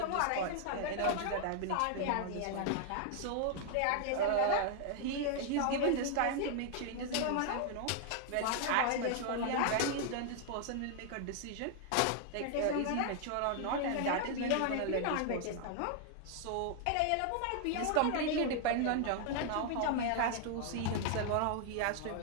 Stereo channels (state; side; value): different; both; correlation 0.00